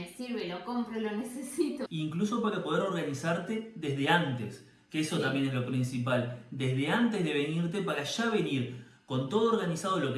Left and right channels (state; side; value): identical; both; correlation 1.00